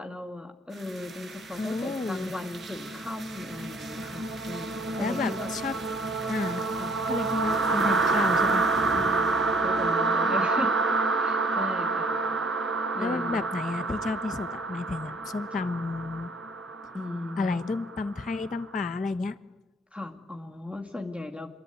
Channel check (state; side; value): normal; both; correlation 0.58